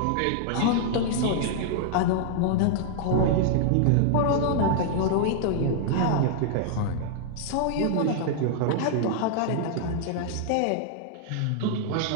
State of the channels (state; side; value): different; both; correlation -0.01